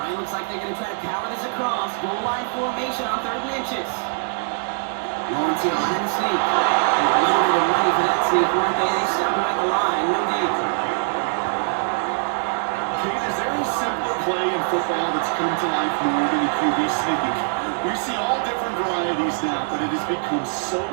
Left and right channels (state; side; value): silent; left; digital silence